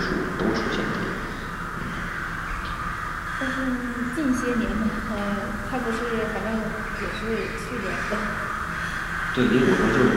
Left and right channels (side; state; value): both; identical; correlation 1.00